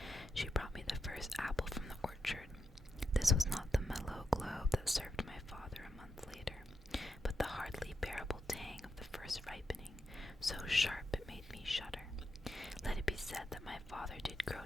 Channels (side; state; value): both; normal; correlation 0.85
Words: she brought me the first apple from the orchard. This was not the mellow globe that served my father a month later, but the hardly bearable tang of the first ripening, so sharp it made me shudder. Let it be said that my father did grow